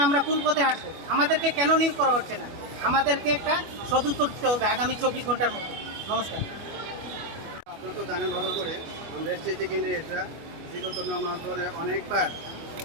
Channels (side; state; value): left; late; 25 ms